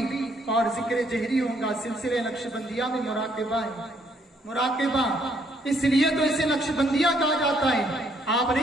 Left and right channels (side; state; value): both; normal; correlation 0.68